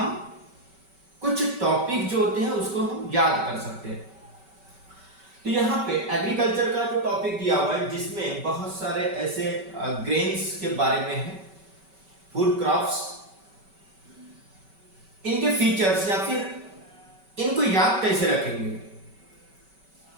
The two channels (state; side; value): late; left; 5.2 ms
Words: कुछ टॉपिक जो होते हैं उसको हम याद कर सकते हैं। तो यहाँ पे एग्रीकल्चर का जो टॉपिक दिया हुआ है जिसमें बहुत सारे ऐसे ग्रेन्स के बारे में है, फूड क्रॉप्स, इनके फीचर्स या फिर इनको याद कैसे रखेंगे,